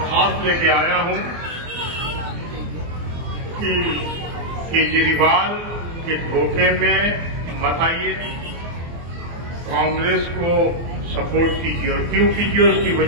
लेके आया हूं कि केजरीवाल के धोखे में मत आइए, कांग्रेस को सपोर्ट कीजिए। और क्यों कीजिए उसकी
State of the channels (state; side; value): late; left; 24 ms